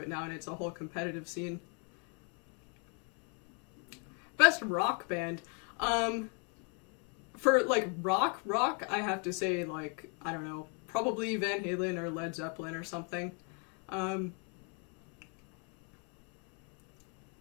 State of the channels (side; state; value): right; quieter; 38.8 dB